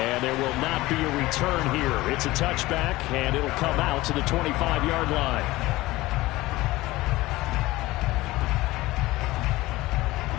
there will not be a return here. It's a touchback, and it'll come out to the 25-yard line.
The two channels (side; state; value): right; quieter; 18.8 dB